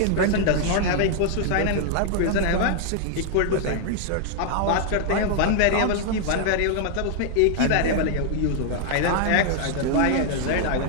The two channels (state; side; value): different; both; correlation 0.00